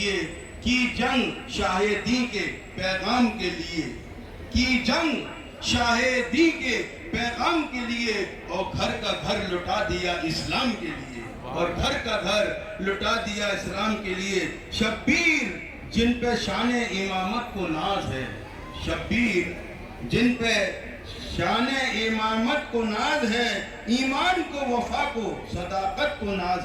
کی جنگ شاہ دی کے پیغام کے لیے, کی جنگ شاہ دی کے پیغام کے لیے, اور گھر کا گھر لٹا دیا اسلام کے لیے, اور گھر کا گھر لٹا دیا اسلام کے لیے. شبیر جن پہ شان امامت کو ناز ہے, شبیر جن پہ شان امامت کو ناز ہے, ایمان کو, وفا کو, صداقت کو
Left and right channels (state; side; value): identical; both; correlation 1.00